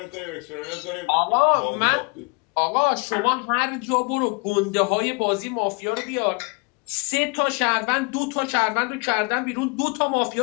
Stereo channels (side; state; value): right; quieter; 31.0 dB